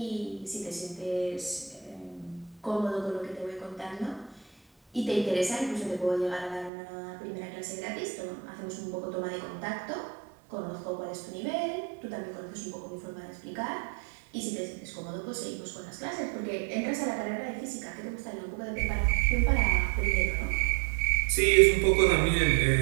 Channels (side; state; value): left; drops out; at 6.7 s